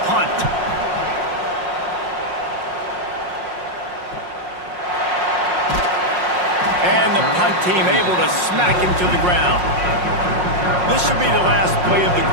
punt. And the punt team able to smack him to the ground. This should be the last play of the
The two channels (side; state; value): left; late; 5.6 ms